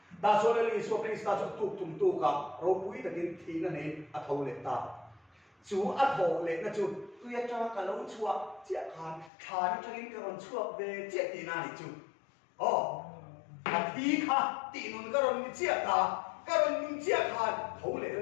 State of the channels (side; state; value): right; drops out; at 9.3 s